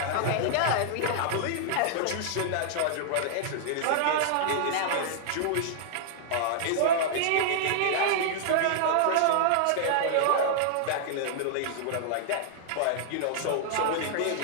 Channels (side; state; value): both; different; correlation -0.01